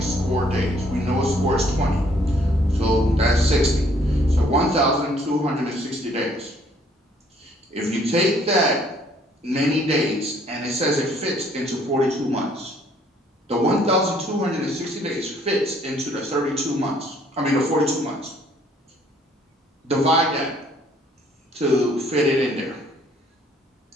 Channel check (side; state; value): both; normal; correlation 0.63